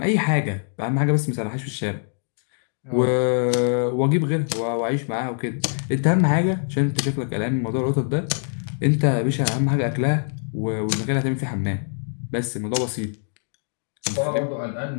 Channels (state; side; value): silent; right; 63 dB below the other